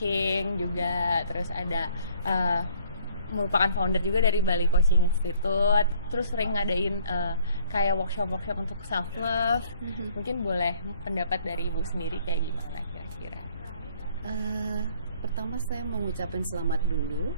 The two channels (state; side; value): inverted; both; correlation -0.59